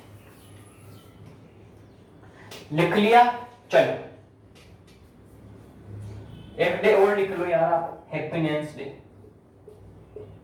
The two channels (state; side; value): identical; both; correlation 1.00